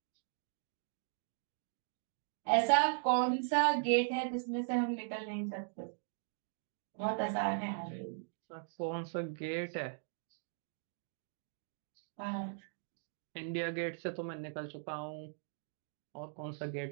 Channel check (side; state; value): left; silent; digital silence